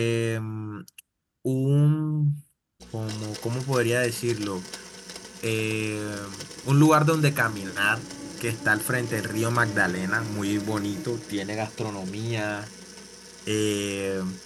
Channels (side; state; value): both; identical; correlation 1.00